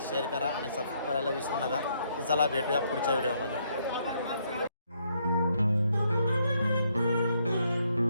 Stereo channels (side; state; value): both; inverted; correlation -0.73